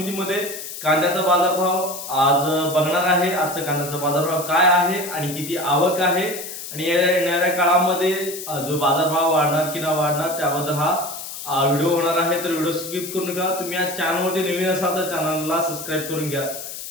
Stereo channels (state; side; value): noise; left; hiss, 9 dB below the sound